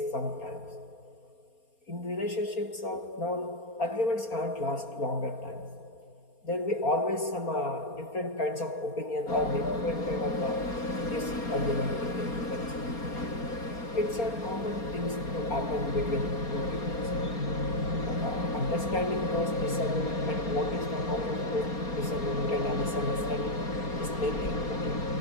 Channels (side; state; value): right; late; 4.3 ms